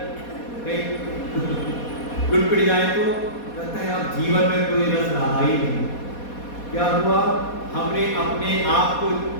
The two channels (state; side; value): late; right; 4.2 ms